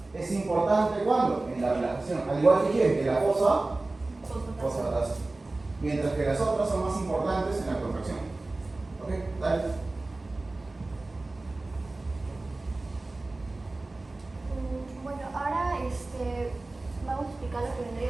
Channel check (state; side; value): quieter; left; 3.1 dB